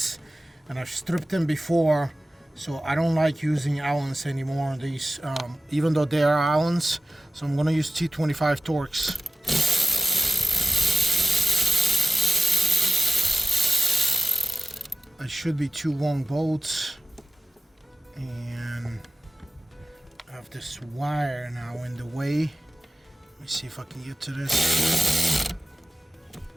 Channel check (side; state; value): both; normal; correlation 0.96